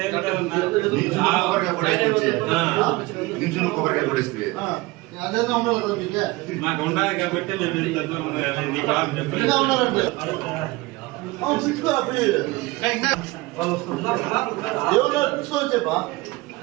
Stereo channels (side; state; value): left; quieter; 21.4 dB